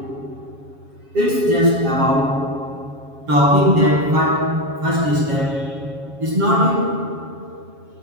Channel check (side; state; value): left; late; 7.3 ms